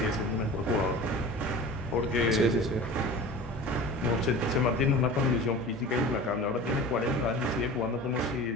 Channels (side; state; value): both; normal; correlation 0.37